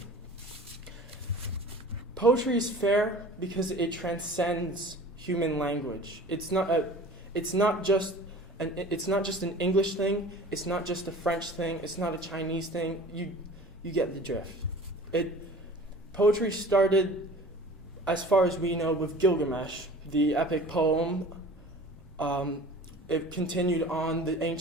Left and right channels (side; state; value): both; normal; correlation 0.43